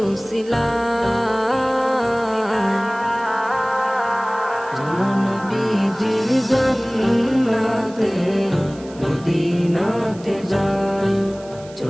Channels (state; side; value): noise; right; hiss, 22 dB below the sound